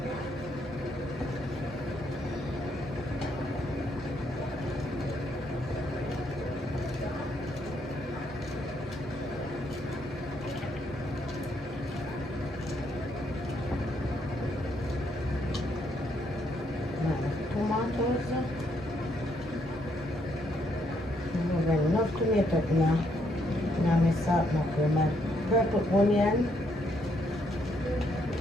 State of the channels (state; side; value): normal; both; correlation 0.73